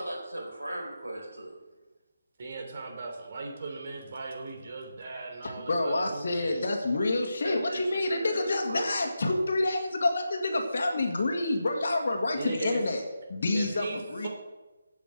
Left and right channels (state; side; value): inverted; both; correlation -0.89